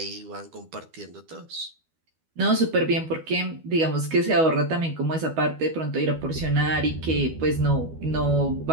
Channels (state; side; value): late; left; 12 ms